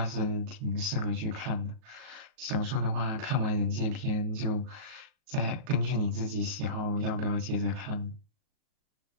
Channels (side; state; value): left; late; 37 ms